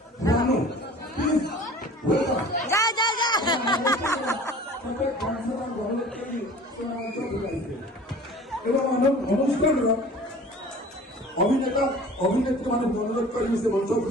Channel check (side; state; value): both; normal; correlation 0.44